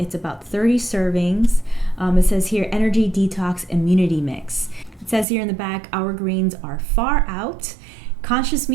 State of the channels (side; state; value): left; drops out; at 5.2 s